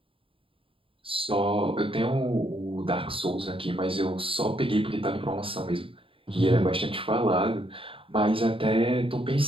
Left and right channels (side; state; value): left; late; 0.26 ms